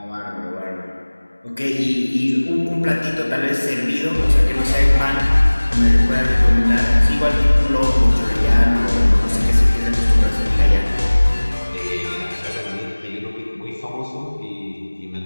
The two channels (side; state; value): both; inverted; correlation -1.00